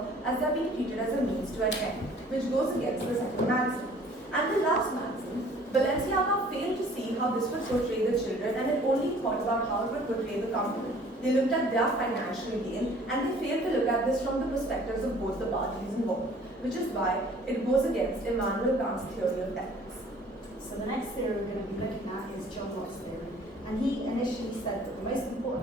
as they are being treated as a means to an end, which goes against the second maxim. And the last maxim, Balenciaga failed to see how this would portray the children, and it only thought about how it would portray the company. They looked at their financial gain, and they failed to look at this from the perspectives of both the parties involved, which is why it goes against Immanuel Kant's theory of ethics. So the next theory we're going to be looking at is John Locke's theory. And he initially said that the most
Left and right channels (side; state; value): both; normal; correlation 0.53